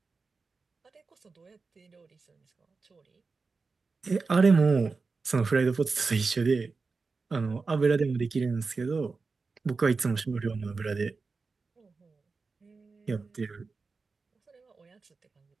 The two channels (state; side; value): quieter; left; 4.3 dB